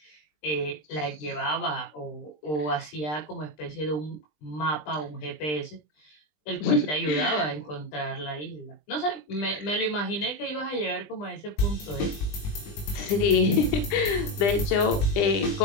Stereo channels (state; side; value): late; right; 20 ms